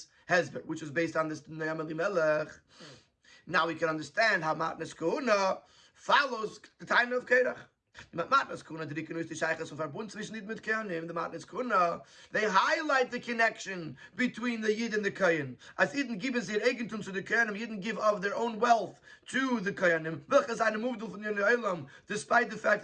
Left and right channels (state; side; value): identical; both; correlation 1.00